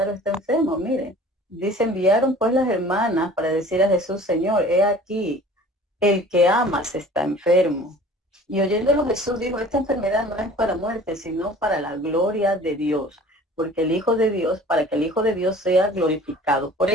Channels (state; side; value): normal; both; correlation 0.46